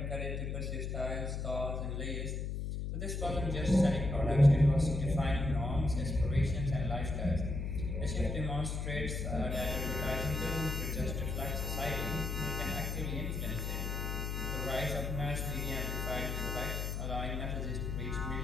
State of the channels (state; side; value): noise; left; hum, 2 dB below the sound